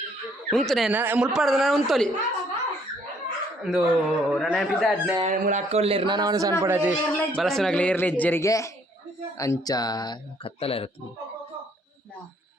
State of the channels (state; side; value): normal; both; correlation 0.65